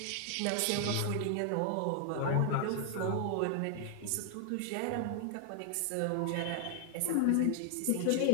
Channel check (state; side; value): different; both; correlation 0.00